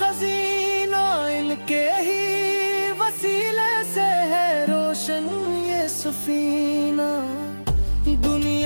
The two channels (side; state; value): both; inverted; correlation -1.00